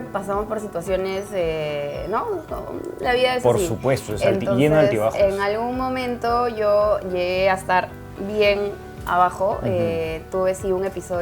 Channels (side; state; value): both; identical; correlation 1.00